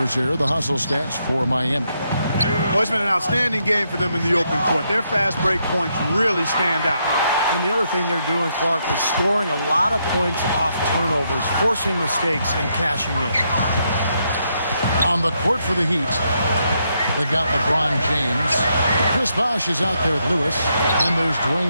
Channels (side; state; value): both; inverted; correlation -0.78